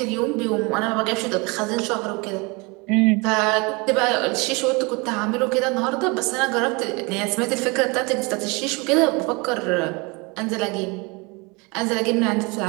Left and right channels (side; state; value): left; quieter; 28.0 dB